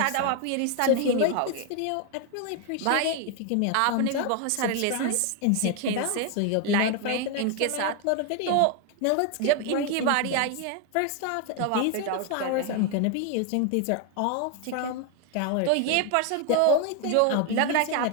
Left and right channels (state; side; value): different; both; correlation 0.01